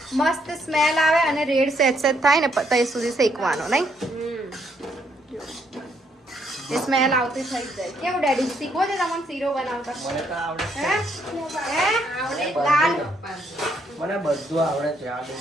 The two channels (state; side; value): normal; both; correlation 0.72